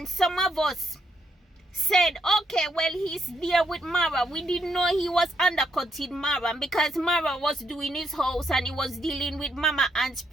some of us said, okay, well, he's there with Marwa. We didn't know he was undercutting Marwa because Marwa was doing his house and he was dealing with Mama Ann's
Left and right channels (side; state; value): both; normal; correlation 0.76